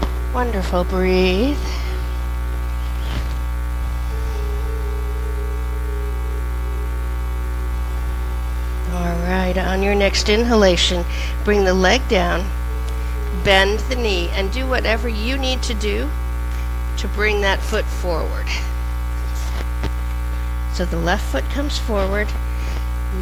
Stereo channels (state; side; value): identical; both; correlation 1.00